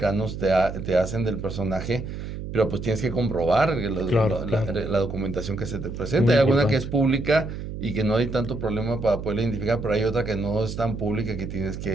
te hacen del personaje, pero pues tienes que comprobar Claro, claro. la documentación que se te presenta. Muy Hay alguna que es importante. pública y que no hay tanto problema para poderla identificar, pero hay otra que no es tan pública, que tienes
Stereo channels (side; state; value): right; noise; hum, 8 dB below the sound